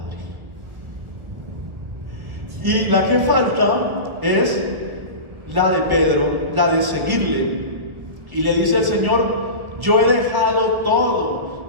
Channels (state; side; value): late; left; 1.7 ms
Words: Y la que falta es la de Pedro, la de seguirle. Y le dice el Señor: yo he dejado todo,